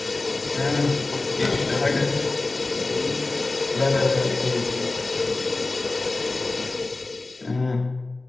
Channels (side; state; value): right; quieter; 3.2 dB